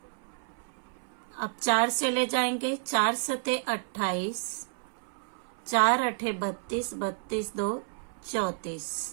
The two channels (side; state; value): left; silent; 57 dB below the other